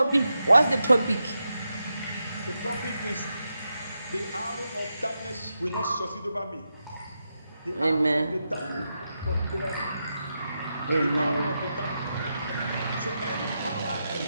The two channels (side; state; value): both; inverted; correlation -0.87